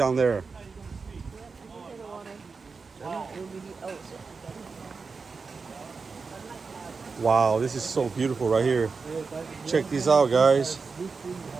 there. Wow, this is so beautiful right here. Check this out, guys.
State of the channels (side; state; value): left; quieter; 4.7 dB